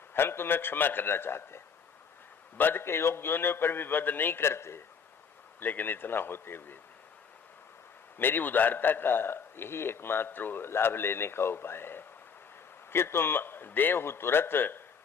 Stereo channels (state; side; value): quieter; right; 6.2 dB